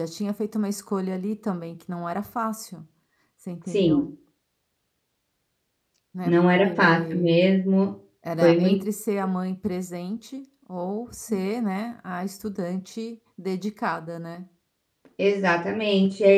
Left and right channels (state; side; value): identical; both; correlation 1.00